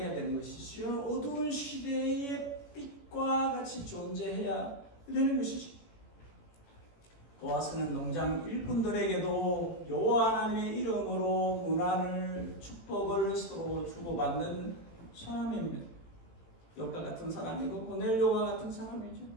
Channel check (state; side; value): late; right; 18 ms